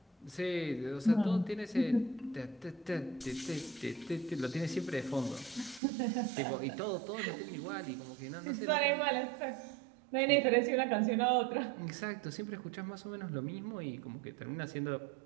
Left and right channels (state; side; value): drops out; left; at 5.8 s